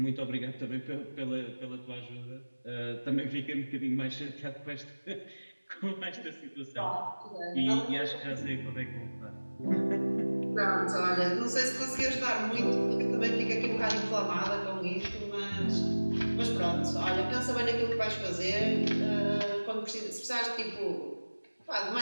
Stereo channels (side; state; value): both; inverted; correlation -1.00